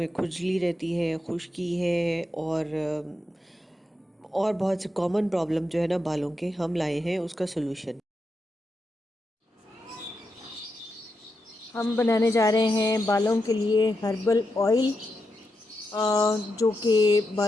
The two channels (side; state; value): both; normal; correlation 0.86